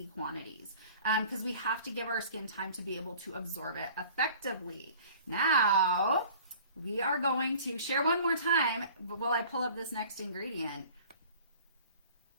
quantities because we have to give our skin time to be able to absorb it effectively. Now, we are going to share one more time while I pull up this next ingredient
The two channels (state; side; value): inverted; both; correlation -0.47